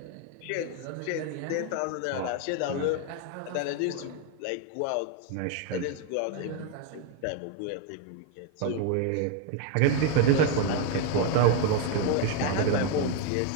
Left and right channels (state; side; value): different; both; correlation 0.01